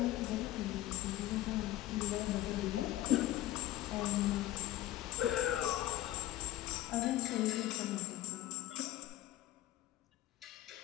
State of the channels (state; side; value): quieter; right; 14.6 dB